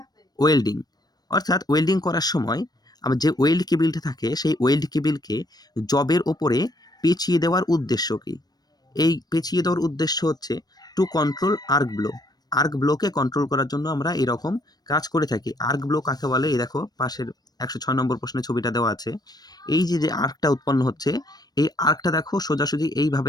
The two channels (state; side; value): late; right; 0.19 ms